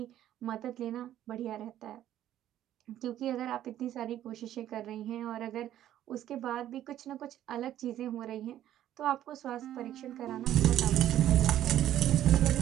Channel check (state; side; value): quieter; left; 12.1 dB